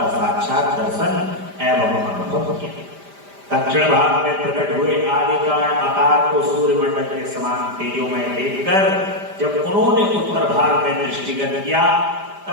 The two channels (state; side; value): late; left; 5.0 ms